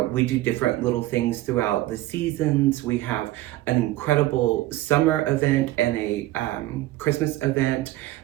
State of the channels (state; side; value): quieter; left; 16.2 dB